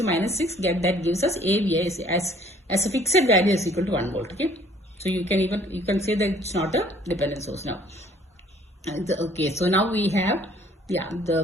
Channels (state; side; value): normal; both; correlation 0.58